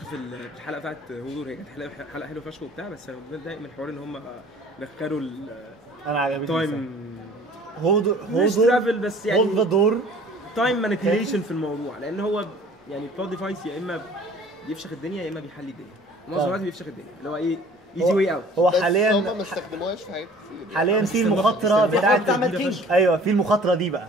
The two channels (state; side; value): normal; both; correlation 0.50